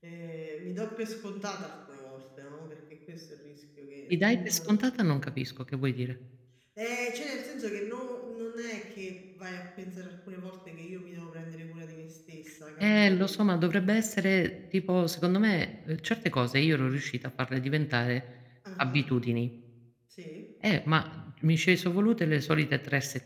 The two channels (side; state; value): both; identical; correlation 1.00